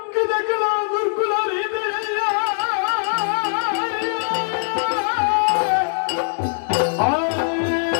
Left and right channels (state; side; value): silent; right; 65 dB below the other